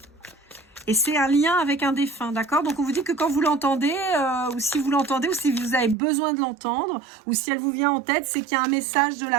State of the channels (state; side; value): drops out; left; at 6.0 s